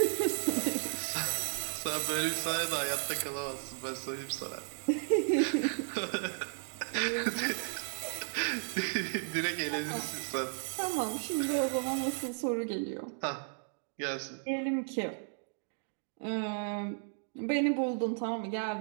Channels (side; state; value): left; silent; digital silence